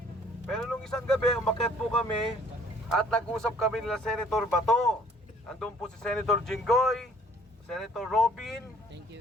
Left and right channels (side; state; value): both; normal; correlation 0.58